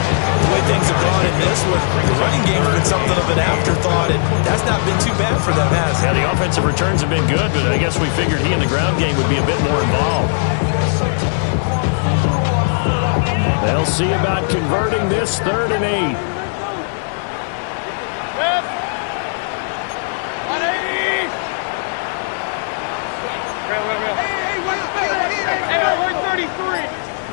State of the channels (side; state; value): right; silent; 68 dB below the other